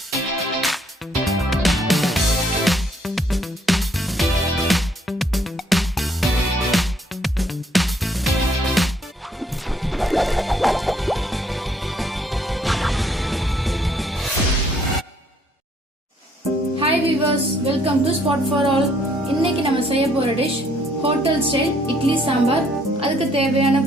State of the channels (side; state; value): both; normal; correlation 0.66